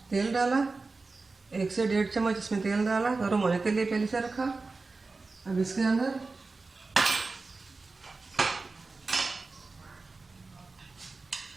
तेल डाला, 1 से 1.5 चम्मच इसमें तेल डाला, गर्म होने के लिए पहले से रखा। अब इसके अंदर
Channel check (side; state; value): left; quieter; 3.8 dB